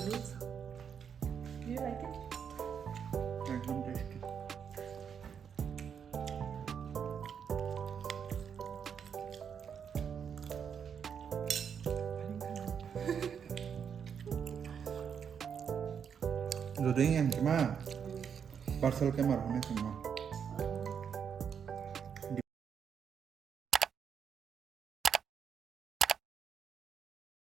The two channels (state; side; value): quieter; left; 7.4 dB